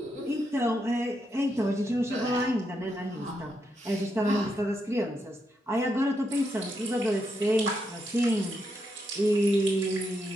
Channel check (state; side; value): normal; both; correlation 0.81